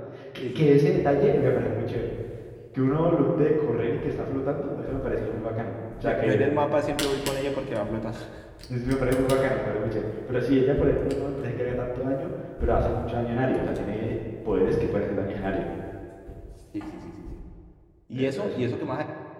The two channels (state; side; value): identical; both; correlation 1.00